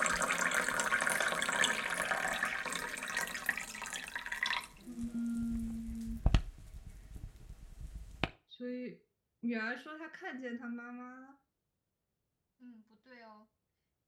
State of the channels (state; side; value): identical; both; correlation 1.00